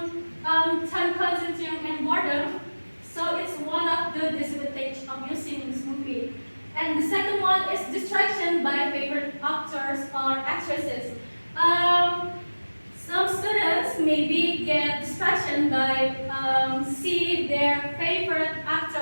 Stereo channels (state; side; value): inverted; both; correlation -1.00